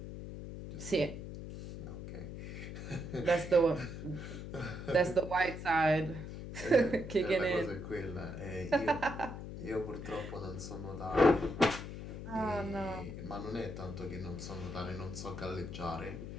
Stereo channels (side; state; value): left; noise; hum, 8 dB below the sound